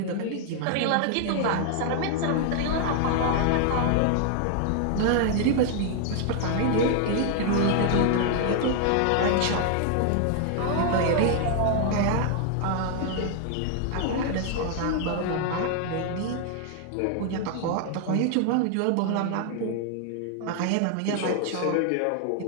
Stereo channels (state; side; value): different; both; correlation 0.00